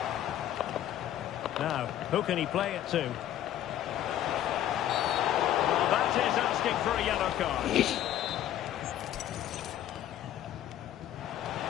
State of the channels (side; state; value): right; quieter; 12.0 dB